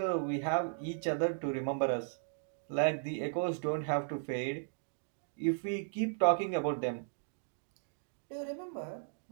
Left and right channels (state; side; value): silent; left; digital silence